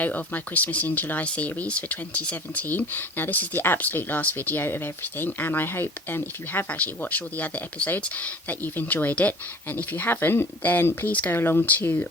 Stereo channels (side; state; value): both; normal; correlation 0.43